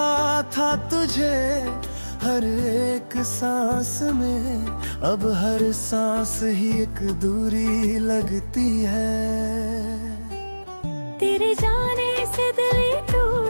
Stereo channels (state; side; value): inverted; both; correlation -1.00